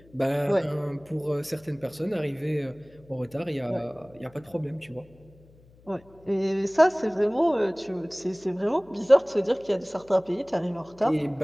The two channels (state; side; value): noise; left; hum, 27 dB below the sound